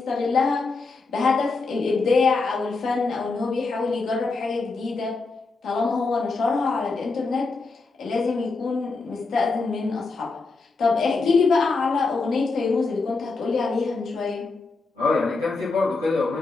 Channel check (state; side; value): quieter; right; 4.0 dB